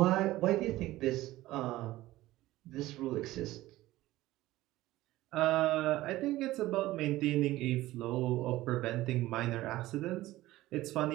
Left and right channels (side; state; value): left; quieter; 16.7 dB